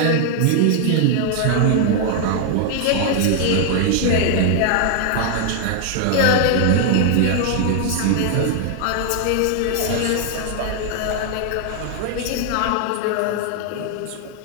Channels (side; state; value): both; different; correlation 0.00